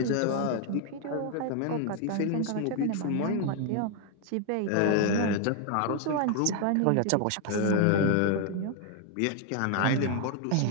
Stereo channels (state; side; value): different; both; correlation 0.00